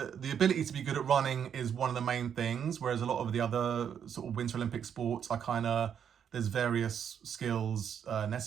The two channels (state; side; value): quieter; left; 8.3 dB